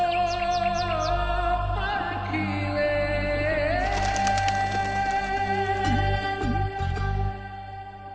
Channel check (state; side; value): identical; both; correlation 1.00